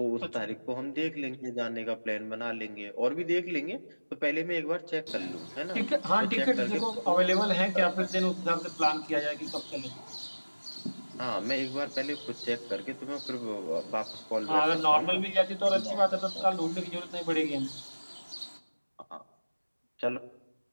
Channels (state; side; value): inverted; both; correlation -1.00